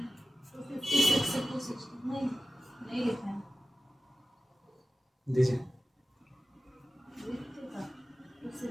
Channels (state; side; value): normal; both; correlation 0.94